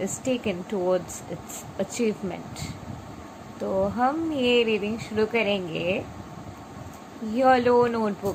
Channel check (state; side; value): identical; both; correlation 1.00